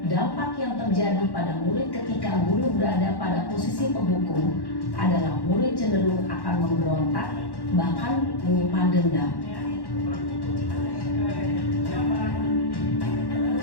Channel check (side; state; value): right; late; 1.1 ms